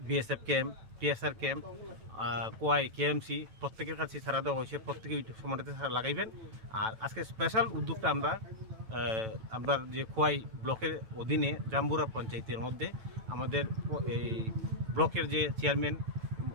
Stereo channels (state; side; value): late; left; 9.0 ms